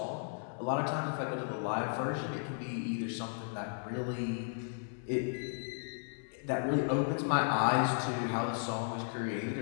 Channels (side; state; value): right; silent; digital silence